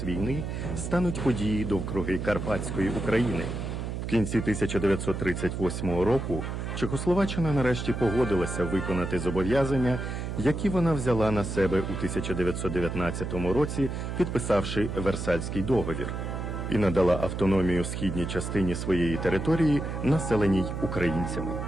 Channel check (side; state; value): right; noise; hum, 5 dB below the sound